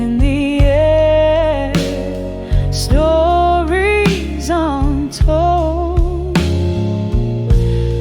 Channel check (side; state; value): both; identical; correlation 1.00